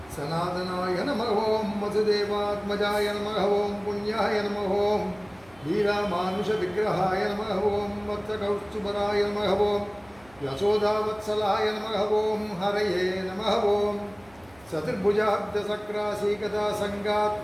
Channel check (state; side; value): noise; right; hum, 27 dB below the sound